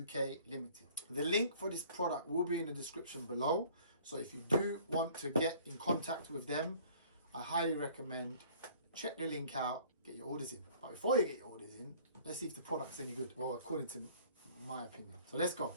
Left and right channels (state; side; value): inverted; both; correlation -0.53